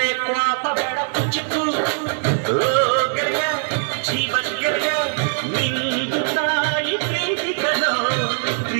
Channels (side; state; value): left; silent; 64 dB below the other